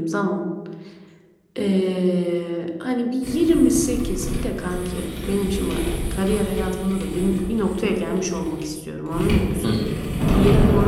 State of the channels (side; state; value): both; identical; correlation 1.00